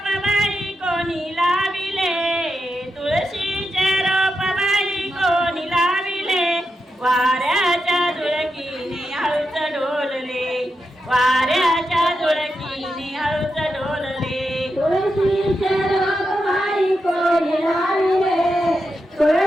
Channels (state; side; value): normal; both; correlation 0.87